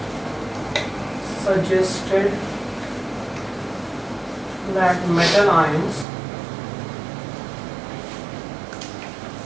suggested that metal ions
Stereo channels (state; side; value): drops out; left; at 6.1 s